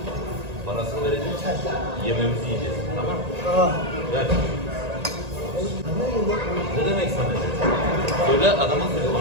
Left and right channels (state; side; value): late; left; 1.9 ms